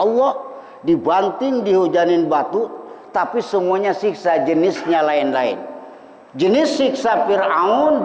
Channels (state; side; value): identical; both; correlation 1.00